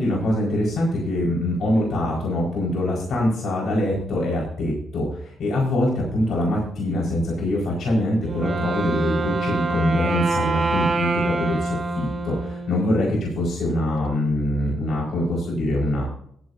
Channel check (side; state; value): both; normal; correlation 0.77